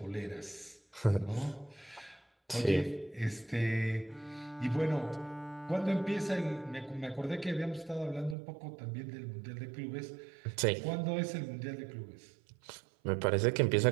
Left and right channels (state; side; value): drops out; left; at 8.3 s